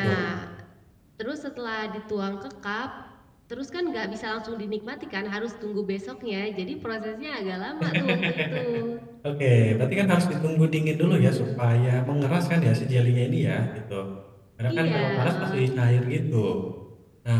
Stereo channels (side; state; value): both; identical; correlation 1.00